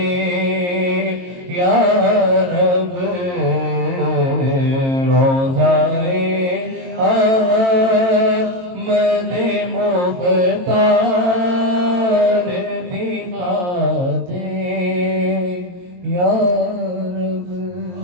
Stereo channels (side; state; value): left; late; 22 ms